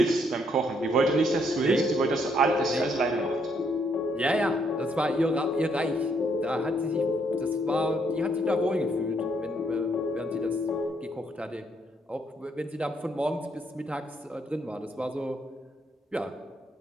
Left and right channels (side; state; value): both; normal; correlation 0.72